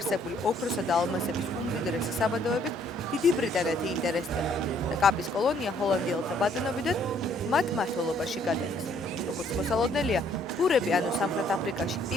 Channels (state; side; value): normal; both; correlation 0.64